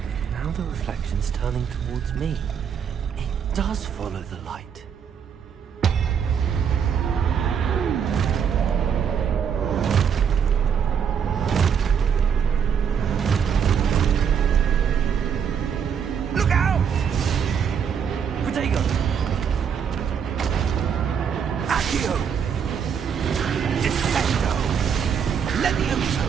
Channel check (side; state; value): left; quieter; 7.4 dB